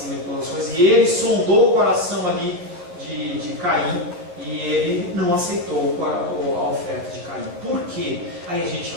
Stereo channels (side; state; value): left; late; 11 ms